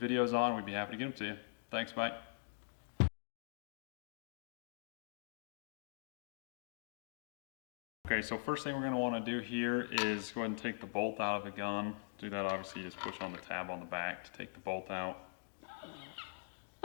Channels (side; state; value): right; silent; digital silence